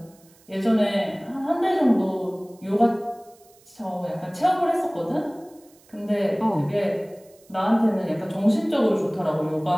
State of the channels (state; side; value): noise; right; hiss, 29 dB below the sound